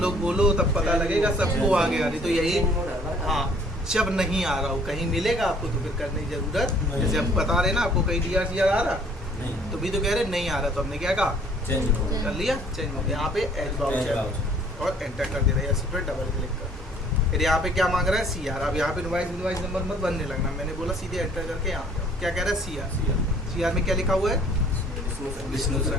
बोलो तब पता लगेगा सबको आ गया, नहीं तो यही। हाँ, जब नहीं आ रहा हो, कहीं मिलेगा आपको तो फिर करने की जरूरत, जैसे हम बता रहे ना आपको कहीं DR CR आ रहा, तो भी तो कह रहे नहीं आ रहा, तो हमने क्या कहा? चेंज कर लिया, चेंज हो गया। यहाँ पे एज वाउचर और एंटर कर दे रहा है, इस पर डबल क्लिक कर। फिर यहाँ पे क्या मांग रहा है? CR। अब यहाँ पे इनवाइस नंबर मत बनने लगना, मैंने बोला सीधे एंटर करके यहाँ पे क्या कह रहा है? CR में क्या लिखा हुआ है? विष्णु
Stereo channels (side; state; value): both; normal; correlation 0.57